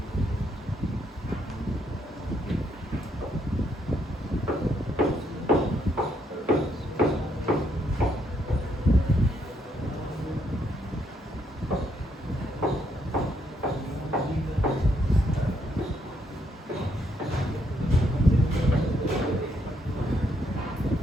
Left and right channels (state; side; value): normal; both; correlation 0.74